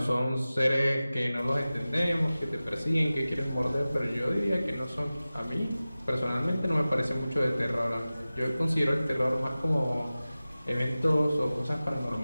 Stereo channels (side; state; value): both; inverted; correlation -0.96